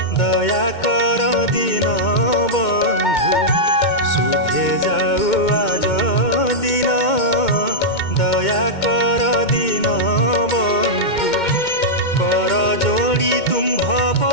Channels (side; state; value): right; late; 2.1 ms